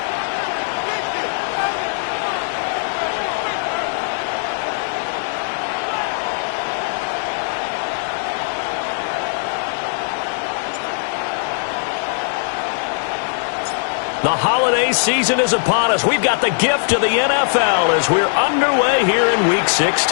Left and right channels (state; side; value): silent; right; digital silence